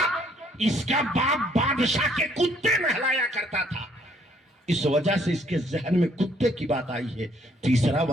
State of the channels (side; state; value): both; normal; correlation 0.65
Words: اس کا باپ بادشاہ کے کتے نہلایا کرتا تھا، اس وجہ سے اس کے ذہن میں کتے کی بات آئی ہے۔ تیسرا